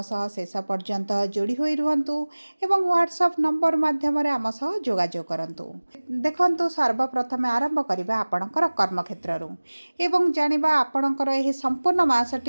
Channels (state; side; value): inverted; both; correlation -1.00